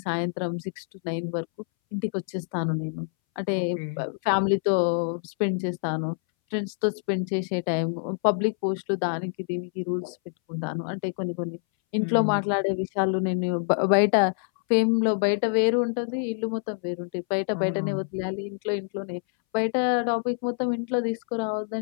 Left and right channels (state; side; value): silent; right; 61 dB below the other